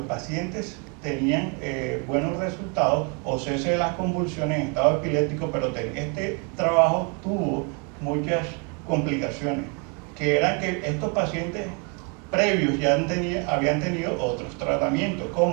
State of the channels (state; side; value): quieter; left; 34.3 dB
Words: pacientes tenían buenos resultados o cese de las convulsiones en estado epiléptico, pero este trabajo tuvo muchas complicaciones, que eran que estos pacientes previos ya habían tenido otros tratamientos